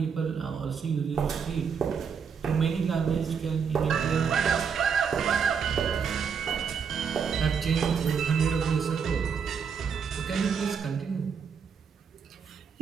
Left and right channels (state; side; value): quieter; left; 6.4 dB